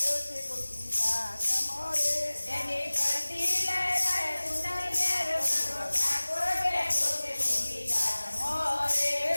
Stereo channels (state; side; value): inverted; both; correlation -1.00